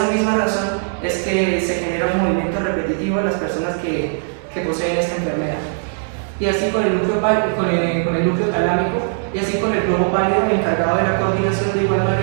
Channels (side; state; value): left; silent; digital silence